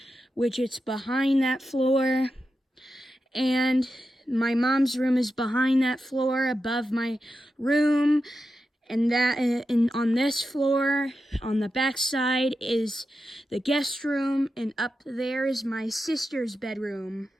which it's behind that floor. And my mom's room is behind that floor, above my room. And on this floor, on the back side, is the guest room. And up there is my sister's bedroom.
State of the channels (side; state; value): both; normal; correlation 0.90